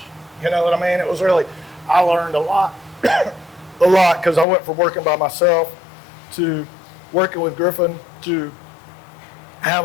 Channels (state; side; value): drops out; right; at 4.5 s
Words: You know what I mean? It was really. I learned a lot, because I went from working by myself to working with Griffin to